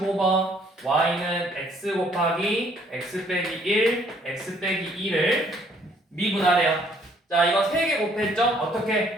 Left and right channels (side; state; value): both; normal; correlation 0.63